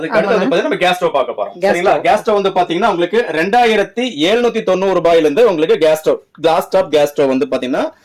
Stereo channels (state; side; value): identical; both; correlation 1.00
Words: அடுத்து வந்து பாத்தீங்கன்னா நம்ம கேஸ் ஸ்டவ் பார்க்க போறோம். சரிங்களா? கேஸ் ஸ்டவ் வந்து பாத்தீங்கன்னா உங்களுக்கு 2790 ரூபாயில இருந்து உங்களுக்கு கிளாஸ் டாப் கேஸ் ஸ்டவ் வந்து பாத்தீங்கன்னா